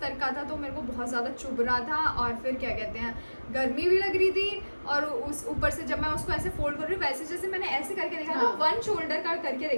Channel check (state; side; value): inverted; both; correlation -1.00